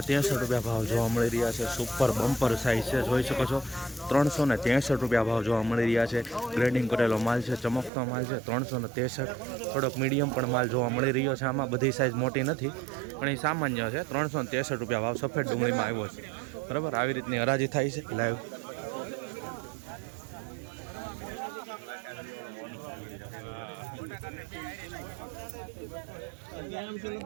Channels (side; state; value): left; drops out; at 7.9 s